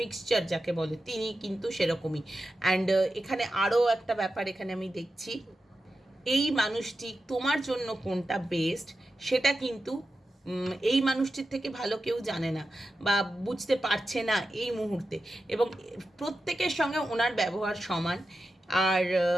মিক্সচার যাকে বলে, তিনি কিন্তু সেরকমই। অ্যান্ড এখানে আরও একটা ব্যাপার এখানে আমি দেখছি, এই মানুষটি তোমার জন্য কোনটা বেস্ট সেটা কিন্তু এই মানুষটির থেকে ভালো কেউ জানে না বা বুঝতে পারছে না এই মুহূর্তে, এবং প্রত্যেকের সঙ্গে ওনার ব্যবহার সমান। আর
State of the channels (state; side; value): normal; both; correlation 0.91